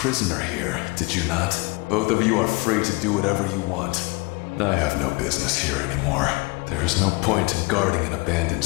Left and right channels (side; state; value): right; quieter; 26.3 dB